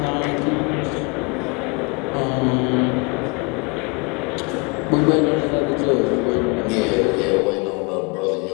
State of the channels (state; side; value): quieter; right; 30.9 dB